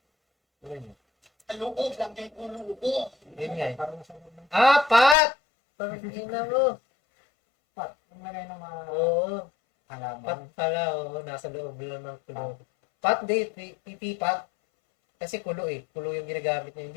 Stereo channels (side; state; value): right; drops out; at 5.2 s